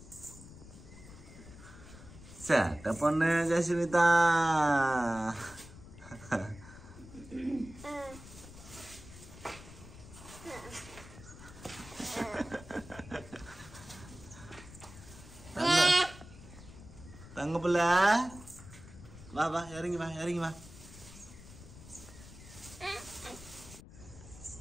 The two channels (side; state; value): left; noise; rumble, 17 dB below the sound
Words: சேட்டை பொண்ணு ஜஸ்விதா. தங்க பிள்ளை வா வா இறங்கி வா.